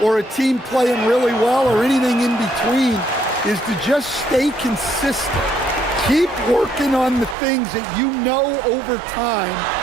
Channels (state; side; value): drops out; left; at 7.4 s